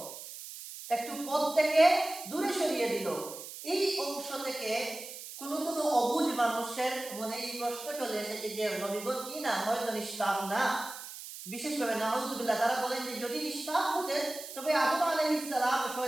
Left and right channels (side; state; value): right; noise; hiss, 12 dB below the sound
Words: একটু পথ থেকে দূরে সরিয়ে দিল। এই অংশ থেকে কোন কোন অবুঝ মানুষের মনে এই প্রশ্ন চলে এসেছে যে নবীগণ কি না, হয়তো নিষ্পাপ না। বিশেষভাবে নাউযুবিল্লাহ, তারা বলেন যে যদি নিষ্পাপ হতেন তবে আদম আলাইহিস সালাম